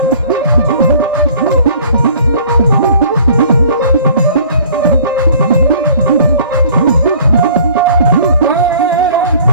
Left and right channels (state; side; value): inverted; both; correlation -0.52